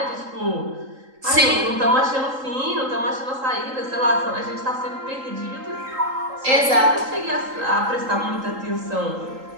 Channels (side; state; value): left; late; 3.8 ms